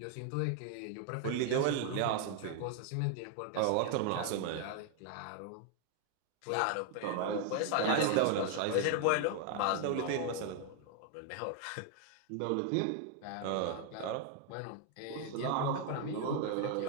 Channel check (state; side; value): different; both; correlation 0.00